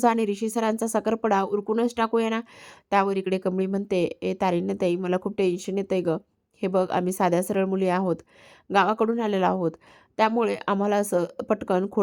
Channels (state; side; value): identical; both; correlation 1.00